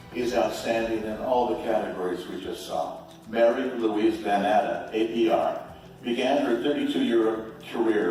is outstanding in all the categories we just saw. Mary Louise VanNatta, APR, began her 32-year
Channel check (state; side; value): identical; both; correlation 1.00